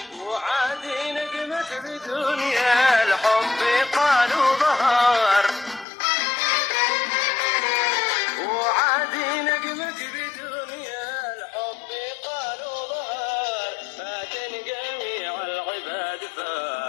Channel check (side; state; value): right; drops out; at 5.9 s